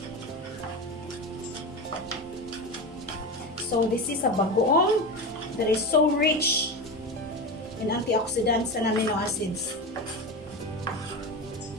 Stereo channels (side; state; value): both; normal; correlation 0.22